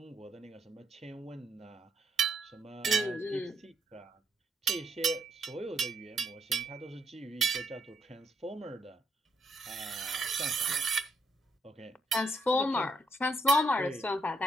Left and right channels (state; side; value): normal; both; correlation 0.74